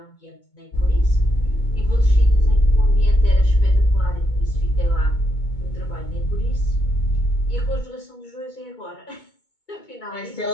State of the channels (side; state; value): right; late; 2.2 ms